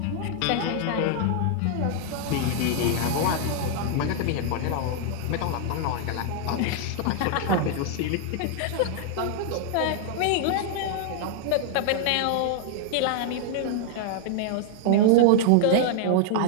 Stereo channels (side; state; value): both; different; correlation -0.01